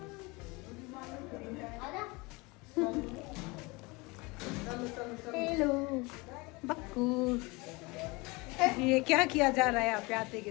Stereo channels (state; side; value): quieter; right; 25.5 dB